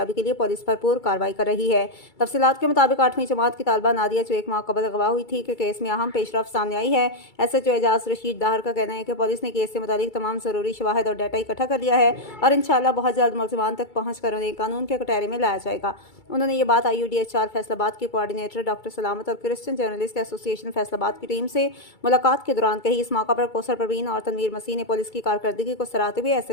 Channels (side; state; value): right; late; 2.3 ms